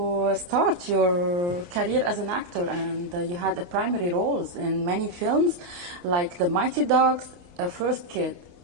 start your career as an actor? And you had a primary roles in many films, like The Mighty Dogs, First Kid.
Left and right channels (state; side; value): late; left; 29 ms